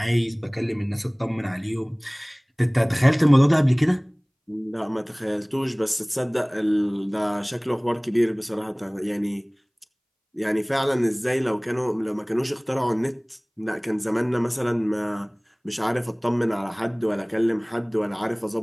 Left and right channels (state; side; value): identical; both; correlation 1.00